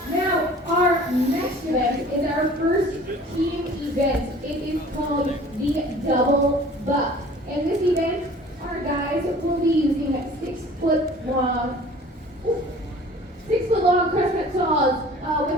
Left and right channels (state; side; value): normal; both; correlation 0.47